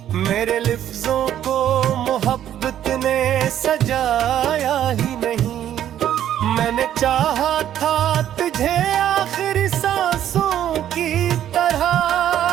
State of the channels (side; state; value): left; quieter; 11.0 dB